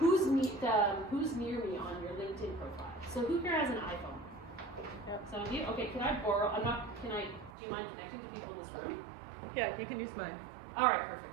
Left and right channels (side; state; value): left; drops out; at 7.5 s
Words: near me on your LinkedIn profile? So who here has an iPhone? Some of you? Okay, can I borrow, do you mind connecting to people in this room? Yeah, you can use mine. All right,